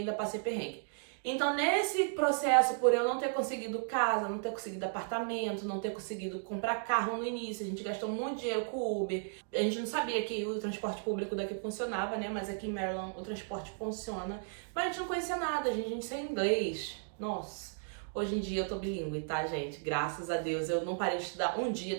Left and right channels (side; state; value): left; silent; digital silence